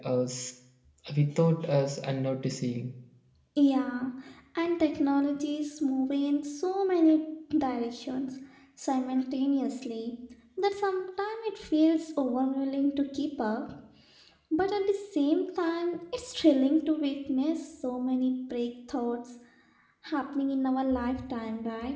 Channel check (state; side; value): identical; both; correlation 1.00